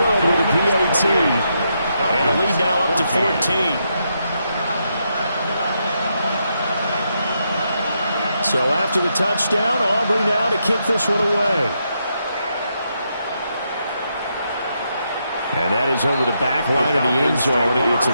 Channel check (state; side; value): inverted; both; correlation -0.80